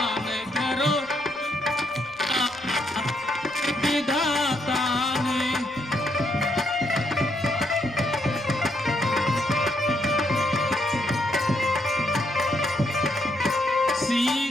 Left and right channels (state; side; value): noise; left; rumble, 29 dB below the sound